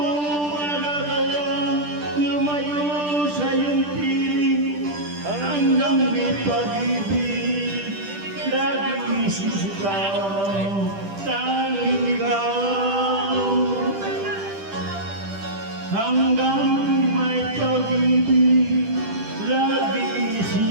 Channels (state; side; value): late; left; 10 ms